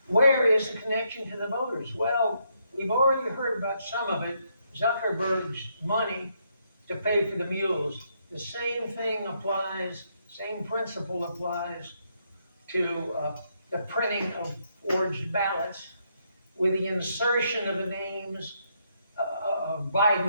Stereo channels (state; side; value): inverted; both; correlation -0.76